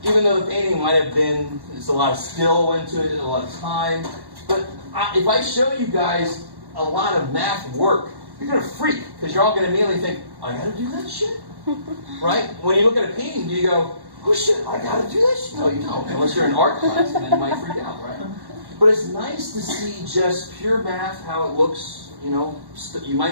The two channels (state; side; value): late; left; 1.1 ms